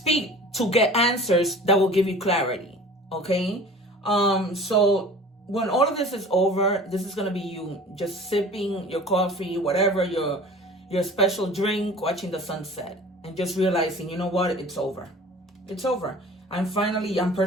to get answers that will give you clarity. Okay. So when all of this is over, this is going to be you just sipping your coffee, whatever, your special drink, watching the sunset, and just realizing, you know what, it's over. It's over. I'm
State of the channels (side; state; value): both; normal; correlation 0.43